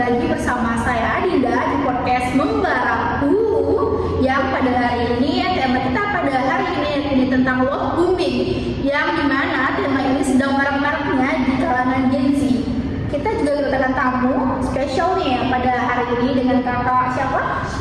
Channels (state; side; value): identical; both; correlation 1.00